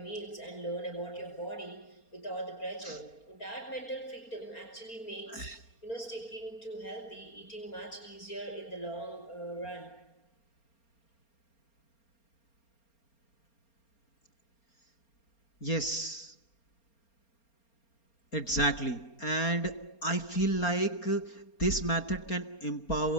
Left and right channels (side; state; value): right; late; 4.3 ms